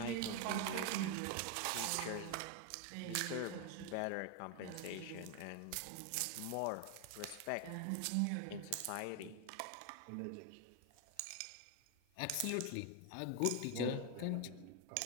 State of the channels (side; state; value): both; different; correlation 0.01